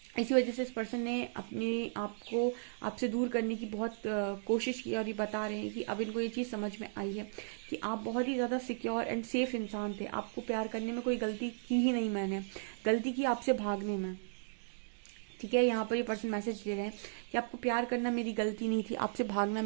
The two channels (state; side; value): silent; left; digital silence